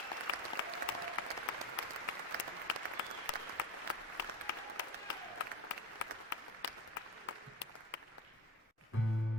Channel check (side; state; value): both; normal; correlation 0.27